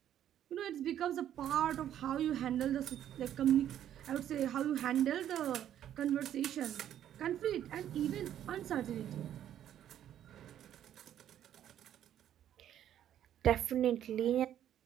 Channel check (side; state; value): left; quieter; 10.9 dB